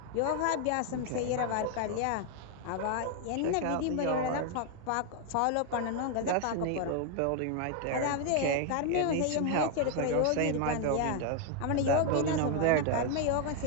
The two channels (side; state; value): both; different; correlation 0.00